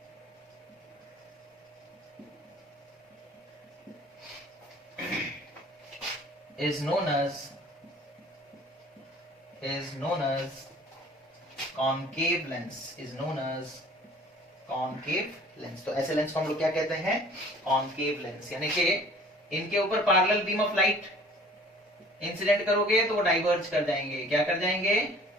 is known as concave lens, is known as concave lens। तो ऐसे lens को हम लोग क्या कहते हैं, concave lens, यानी कि इनके ऊपर parallel beam of light incident करोगे तो वो डाइवर्ज कर जाएंगे। क्या कर जाएंगे,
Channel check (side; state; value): both; normal; correlation 0.50